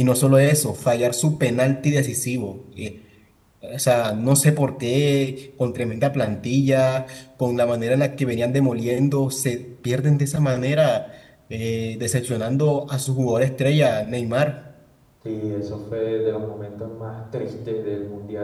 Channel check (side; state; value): both; identical; correlation 1.00